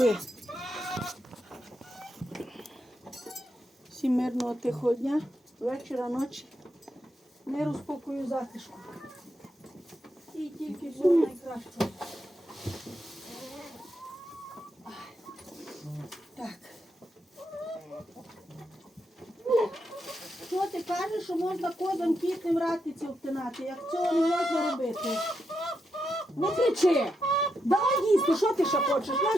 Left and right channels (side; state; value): both; normal; correlation 0.83